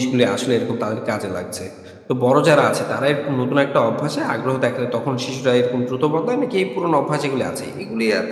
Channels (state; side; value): identical; both; correlation 1.00